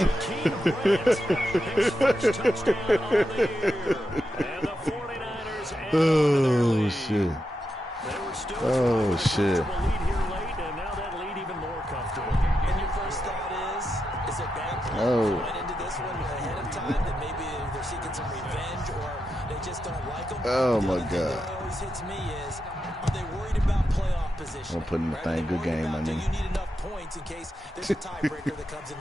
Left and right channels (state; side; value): normal; both; correlation 0.87